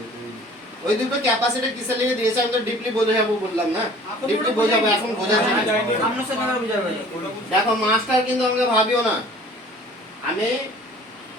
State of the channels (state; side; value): normal; both; correlation 0.49